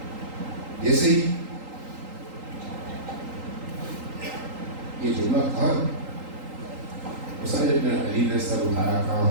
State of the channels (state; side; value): late; left; 3.8 ms